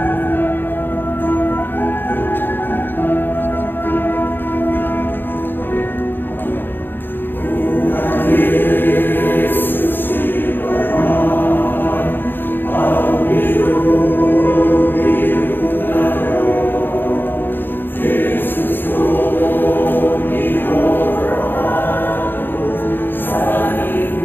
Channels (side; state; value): right; late; 0.097 ms